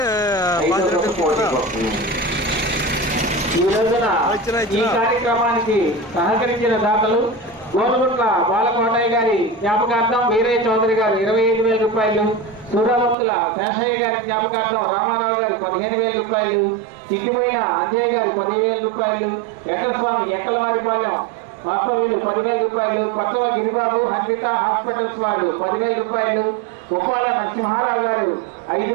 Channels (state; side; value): drops out; left; at 13.2 s